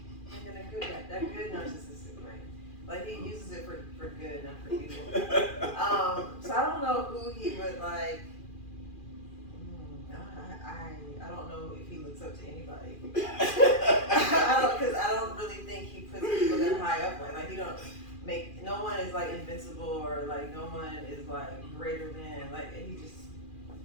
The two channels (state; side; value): late; right; 2.4 ms